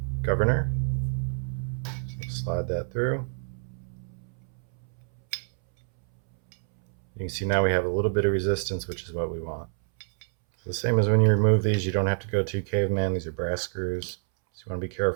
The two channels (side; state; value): left; silent; 60 dB below the other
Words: governor. So slide that through. You can see now we have a little bit of resistance, which is what we want. So the same as when you remove these, you don't have to go too caveman. These are brass screws, so you want to be